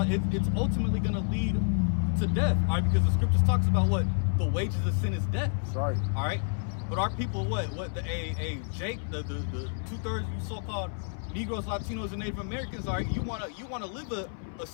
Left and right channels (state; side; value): silent; right; 58 dB below the other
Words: it's ultimately going to lead to death. All right, because the scriptures talks about what the wages of sin is death. That's right. All right, but our people, Jake, the 2/3 you so-called Negroes, Latinos, and Native Americans, all right, you wanna live a